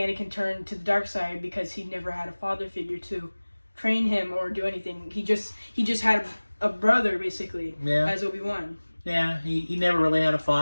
turned to the dark side because he never had a father figure to train him or do anything. He just had a brother, basically, as Obi-Wan. Yeah, he never really had a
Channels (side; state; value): both; inverted; correlation -1.00